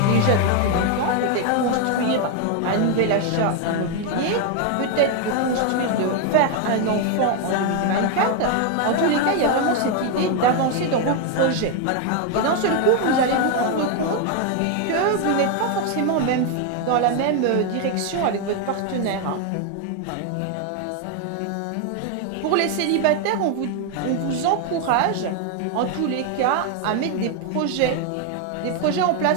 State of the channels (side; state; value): both; different; correlation 0.01